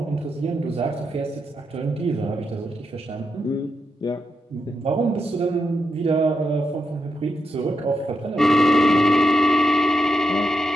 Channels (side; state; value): both; normal; correlation 0.85